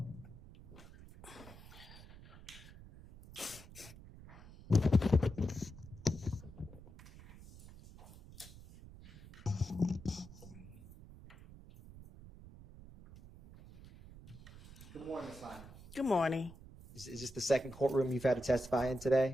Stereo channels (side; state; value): right; noise; rumble, 17 dB below the sound